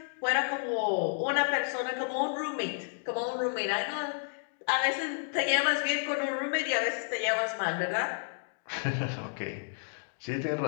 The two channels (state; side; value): silent; right; digital silence